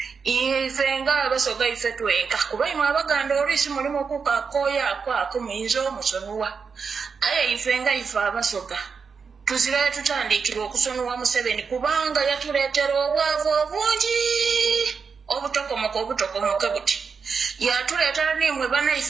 Ife nga abasoga ife twenka kuba imwe abaganda oluusi mulimu okukakooya ako muyinza omusonuwa aye ife nga ife abasoga tuzirayo tutandikira okusonuwa Museveni kubanga yatuleetera obwavu obungi obutokomoke buti yatuleetera nimwe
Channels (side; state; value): left; quieter; 5.6 dB